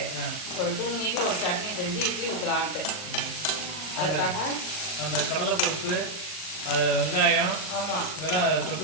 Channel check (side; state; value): right; late; 39 ms